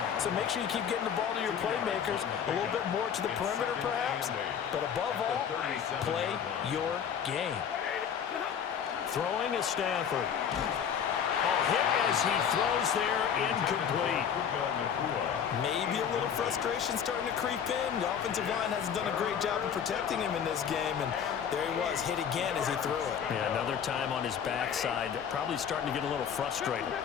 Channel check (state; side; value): quieter; right; 8.0 dB